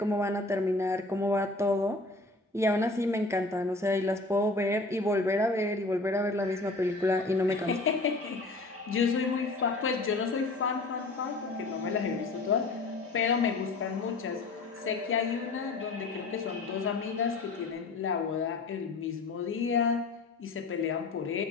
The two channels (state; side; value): quieter; right; 3.3 dB